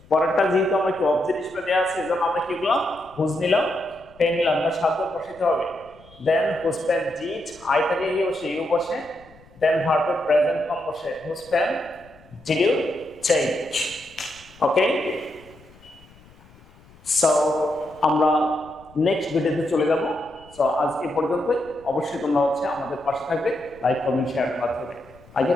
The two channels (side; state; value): left; noise; rumble, 26 dB below the sound